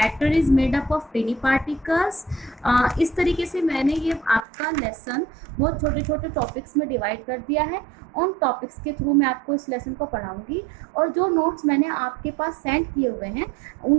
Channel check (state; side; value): drops out; left; at 4.5 s